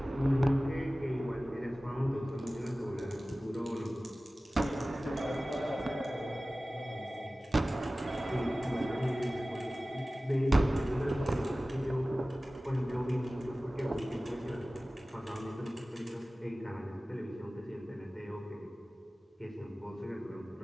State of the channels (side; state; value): both; normal; correlation 0.97